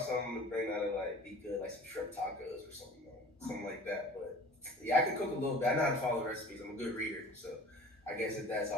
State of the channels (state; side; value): normal; both; correlation 0.44